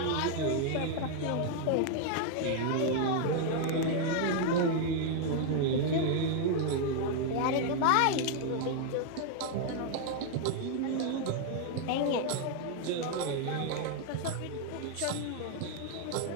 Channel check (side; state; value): both; different; correlation 0.00